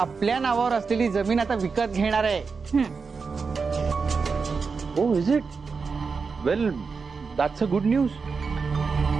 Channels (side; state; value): left; quieter; 5.0 dB